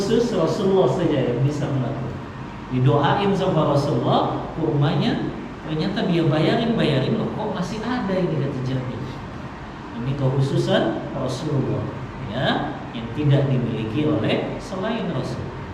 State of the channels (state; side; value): identical; both; correlation 1.00